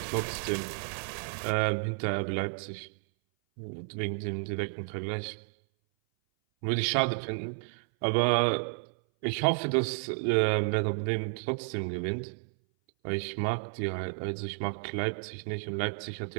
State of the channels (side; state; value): left; silent; 57 dB below the other